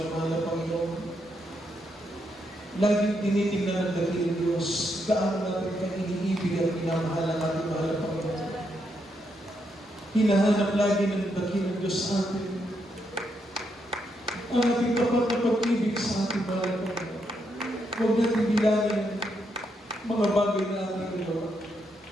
mahal na Panginoon. Laging tinitingnan ng dakilang Diyos gaano natin kang iniibig at minamahal ang ating mahal na Panginoon. Hinahanap lagi ng dakilang Diyos sa atin ang ating tapat na pag-ibig sa ating mahal na Panginoon. Huwag natin bilangin mga bagay na ating ginawa.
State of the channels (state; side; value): normal; both; correlation 0.79